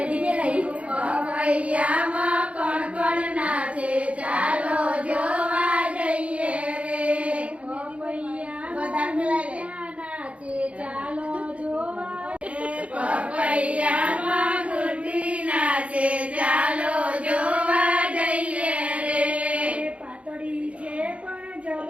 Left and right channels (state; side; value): late; left; 0.063 ms